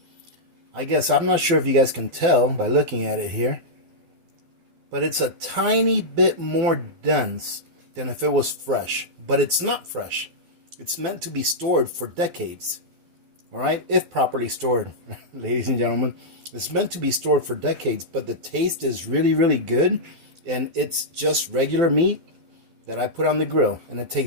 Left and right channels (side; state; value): left; late; 12 ms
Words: I guess I'm not sure if you guys can tell by looking at it here, but it's a tiny bit more dense than if it was fresh. But it's not fresh. It's meant to be stored for decades. All right, if properly stored, ladies and gentlemen. It's meant to be stored for decades, but the taste is really, really good. And it's just regular meat that I put on the grill, and it